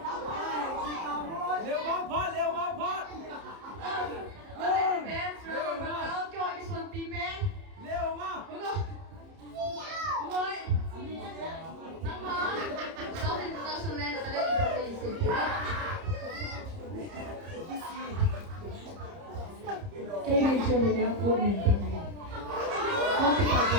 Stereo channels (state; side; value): late; left; 30 ms